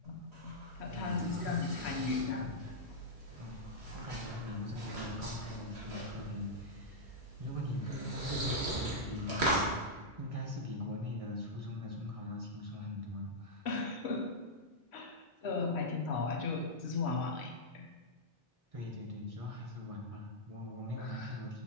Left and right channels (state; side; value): normal; both; correlation -0.08